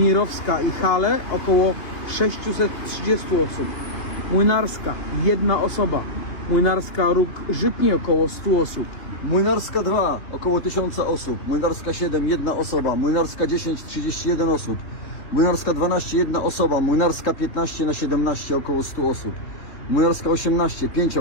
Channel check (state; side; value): late; right; 2.9 ms